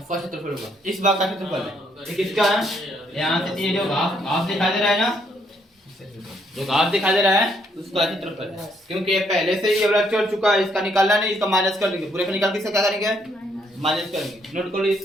क्षेत्रफल होगा इस भाग का क्षेत्रफल है ये किसका है यहाँ से ये जो घास दिखाई दे रहा है ना जो घास दिखाई दे रहा है उसका क्षेत्रफल है क्योंकि ये पहले से ही ये वाला चढ़ चुका है इसका निकालना नहीं इसका माइनस कर देंगे पूरे का निकाल के इसका क्या करेंगे माइनस करेंगे नोट कर लो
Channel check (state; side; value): normal; both; correlation 0.71